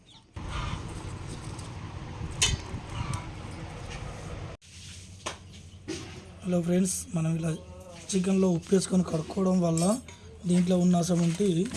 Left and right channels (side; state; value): both; identical; correlation 1.00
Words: హలో ఫ్రెండ్స్, మనం ఇలా చికెన్లో ఉప్పు వేసుకొని కడుక్కోవడం వల్ల దీంట్లో ఉన్న అసమంటి